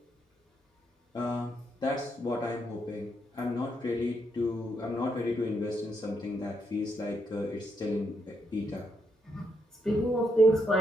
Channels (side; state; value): both; normal; correlation 0.78